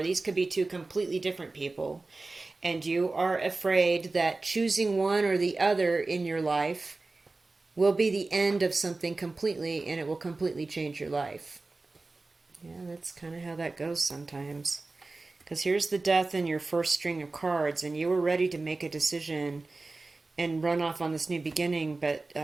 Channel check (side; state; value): left; quieter; 3.4 dB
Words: these could be two completely different people. And you are afraid that choosing one or the other in your life will be the end of something completely, and it will completely change your life. Yeah, that's kind of how that goes sometimes. Because here's the death in your first string of cards, and you were ready to make a decision and run off on this new beginning, but